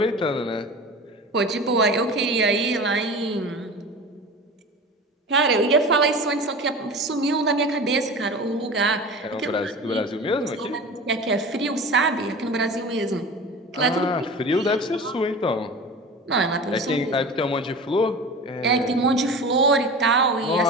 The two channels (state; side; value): normal; both; correlation 0.34